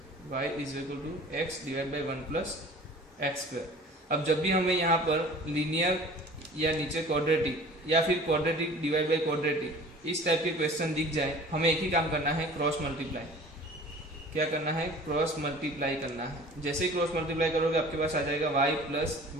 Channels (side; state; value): both; normal; correlation 0.45